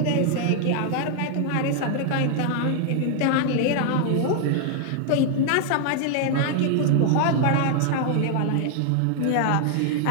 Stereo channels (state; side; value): different; both; correlation 0.00